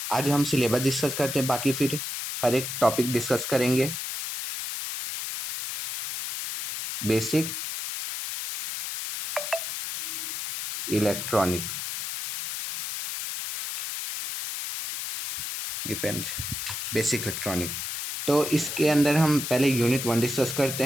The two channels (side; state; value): left; noise; hiss, 5 dB below the sound